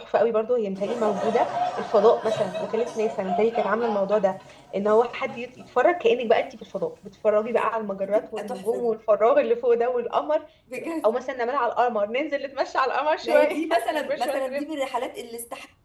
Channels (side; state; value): both; identical; correlation 1.00